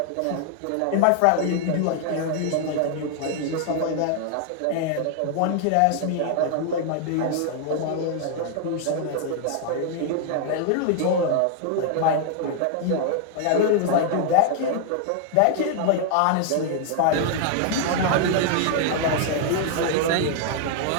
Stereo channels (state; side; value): different; both; correlation 0.00